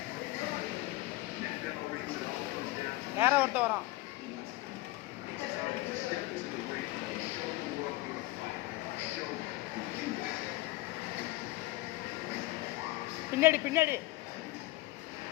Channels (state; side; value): quieter; right; 19.2 dB